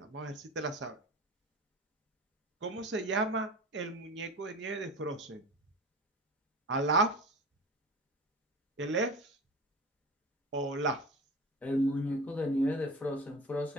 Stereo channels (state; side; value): normal; both; correlation 0.34